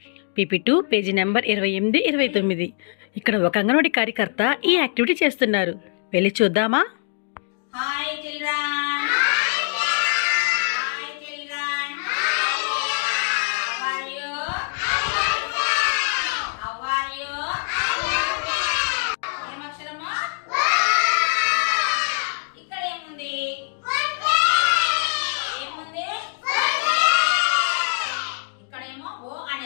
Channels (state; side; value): silent; right; 56 dB below the other